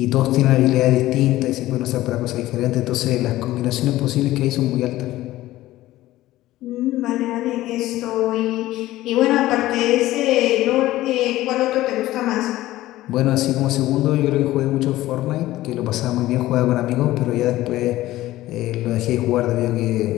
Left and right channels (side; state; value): right; quieter; 16.0 dB